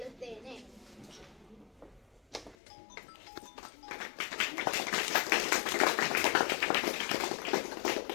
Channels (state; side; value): drops out; right; at 2.6 s